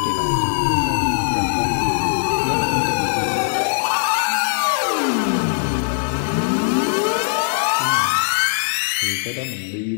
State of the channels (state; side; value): silent; right; digital silence